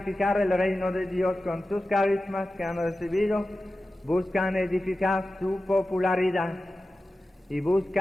el reino de Dios con sus carismas que han recibido, buscan edificar su popularidad y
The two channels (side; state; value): both; normal; correlation 0.94